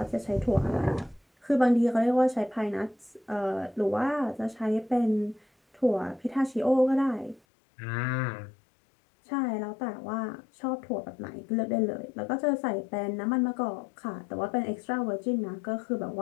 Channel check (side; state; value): right; drops out; at 7.4 s